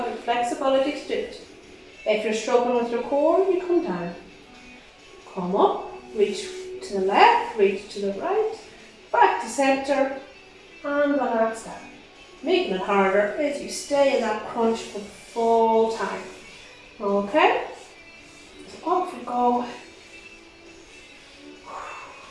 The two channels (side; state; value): both; identical; correlation 1.00